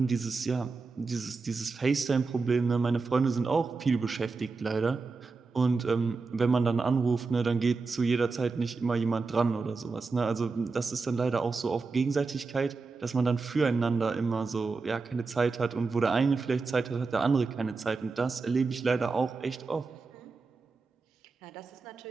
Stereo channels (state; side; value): quieter; left; 4.2 dB